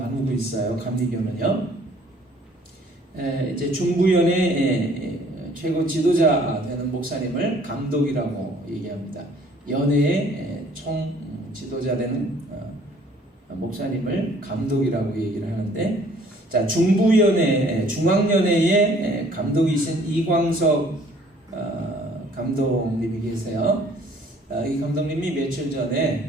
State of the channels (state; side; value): normal; both; correlation 0.57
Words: 있어요. 감리교는요. 이제 중부연회 최고 지도자 되는 목사님을 감독이라고 얘기합니다. 연회의 총 지도자 되는 목사님을 감독이라고 얘기를 하는데, 자 중부연회, 중앙연회의 감독이신 이광석 감독님이 계세요. 이 감독님이 며칠